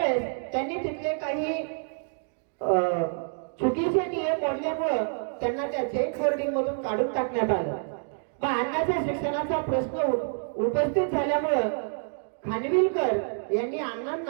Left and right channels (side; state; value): left; silent; digital silence